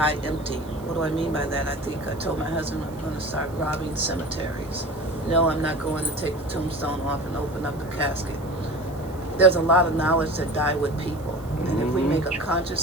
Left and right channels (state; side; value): noise; right; hiss, 24 dB below the sound